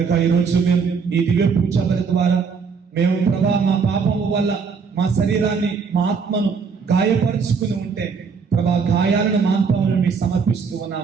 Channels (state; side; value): quieter; left; 5.5 dB